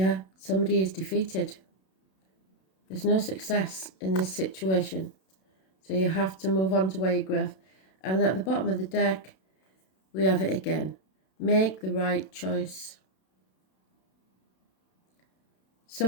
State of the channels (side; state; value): right; late; 32 ms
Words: somebody is defeated. There's no success in this situation. So you have to move on to where you grow. And at the bottom of the deck, we have it again. Make the right choice.